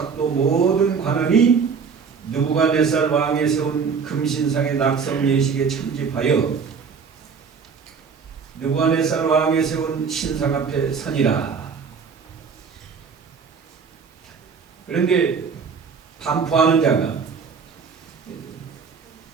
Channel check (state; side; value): quieter; left; 5.9 dB